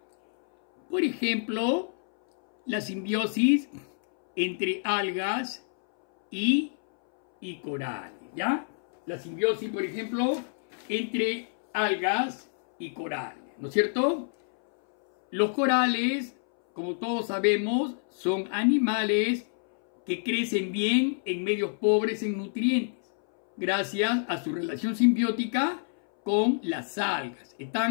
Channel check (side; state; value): right; silent; 60 dB below the other